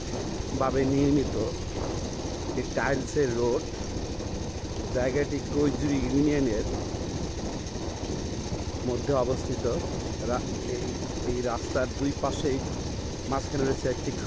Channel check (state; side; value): identical; both; correlation 1.00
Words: নির্মিত এই টাইলসের রোড। জায়গাটি কৈজুরি ইউনিয়নের মধ্যে অবস্থিত। এই রাস্তার দুই পাশেই মাঝখানে রয়েছে একটি